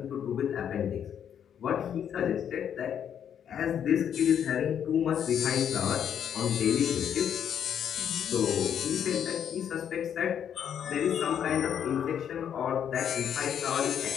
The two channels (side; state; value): right; quieter; 8.8 dB